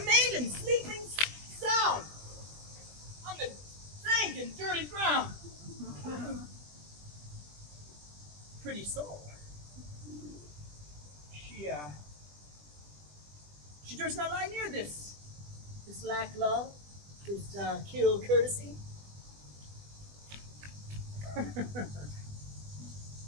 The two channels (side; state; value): left; late; 20 ms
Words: sleeping sound on the dank and dirty ground. Pretty soul. She durst not lie near this lack love, this kill courtesy.